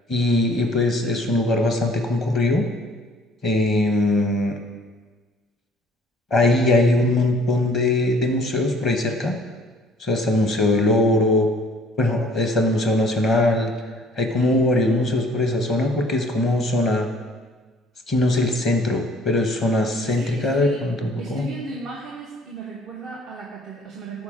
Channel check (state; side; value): normal; both; correlation 0.56